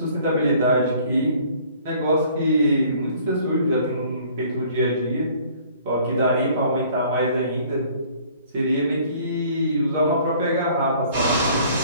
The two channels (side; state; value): both; inverted; correlation -0.56